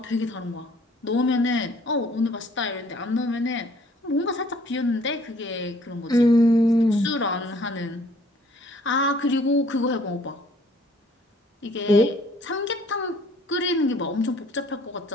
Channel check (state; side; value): normal; both; correlation 0.58